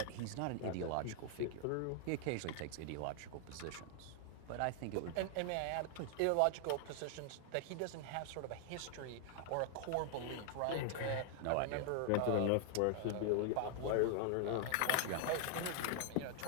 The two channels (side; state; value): both; different; correlation 0.00